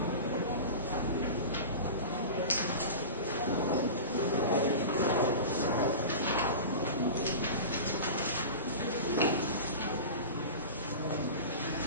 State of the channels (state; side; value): inverted; both; correlation -0.31